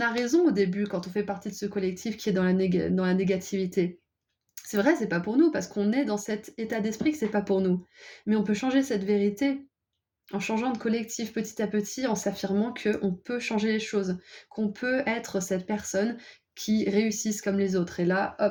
a raison au début quand on fait partie de ce collectif qui est dans la négativité. C'est vrai, c'est pas pour nous, parce qu'on est dans cet état d'esprit que c'est pas pour nous. Mais on peut changer cette vérité en changeant de collectif petit à petit, en s'affirmant qu'on peut changer les choses, qu'on peut être cette personne qui réussisse comme les autres. Et là,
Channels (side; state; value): both; identical; correlation 1.00